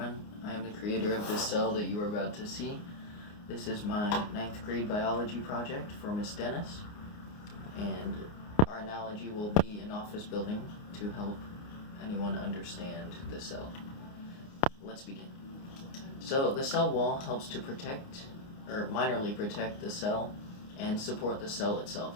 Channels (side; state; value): right; late; 29 ms